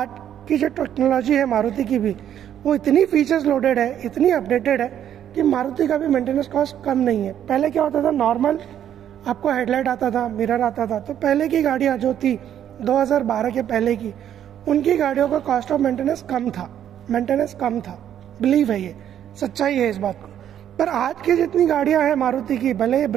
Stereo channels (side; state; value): left; quieter; 10.2 dB